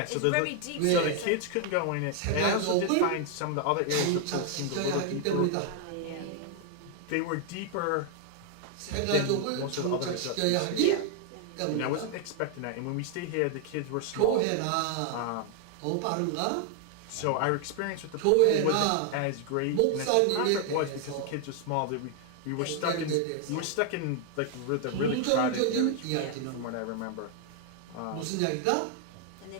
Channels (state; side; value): different; both; correlation 0.00